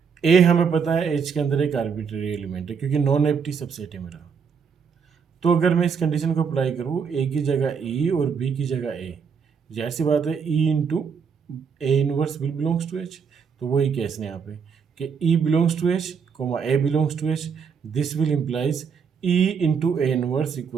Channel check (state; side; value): quieter; left; 6.3 dB